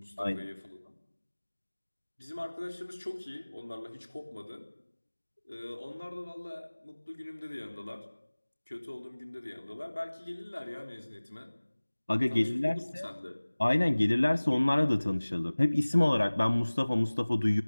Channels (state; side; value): inverted; both; correlation -1.00